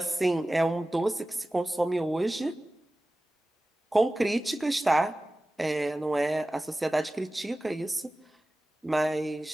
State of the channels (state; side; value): normal; both; correlation 0.96